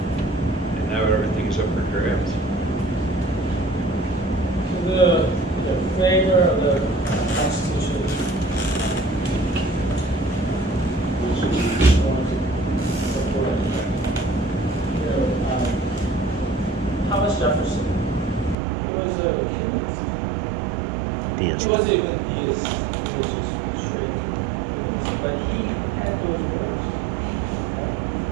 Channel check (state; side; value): drops out; left; at 18.6 s